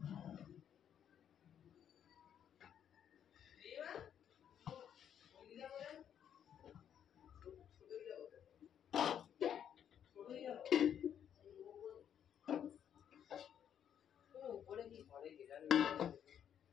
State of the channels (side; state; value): right; quieter; 9.1 dB